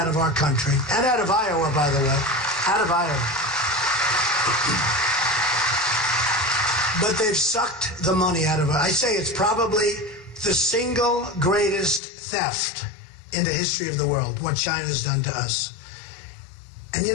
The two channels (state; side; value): drops out; right; at 12.0 s